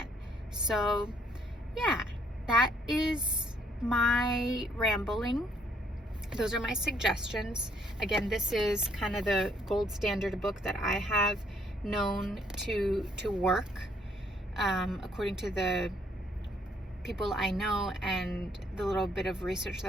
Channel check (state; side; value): normal; both; correlation 0.67